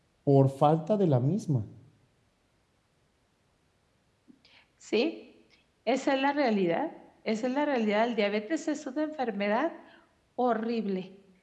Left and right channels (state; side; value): identical; both; correlation 1.00